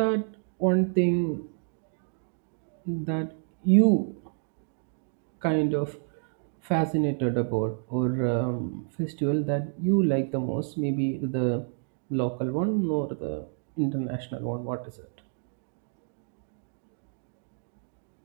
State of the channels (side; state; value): left; silent; 58 dB below the other